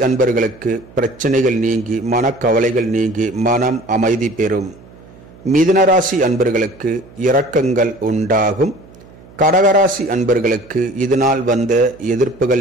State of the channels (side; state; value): right; noise; hum, 23 dB below the sound